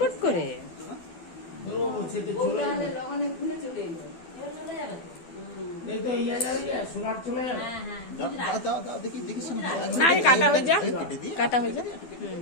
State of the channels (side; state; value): right; late; 12 ms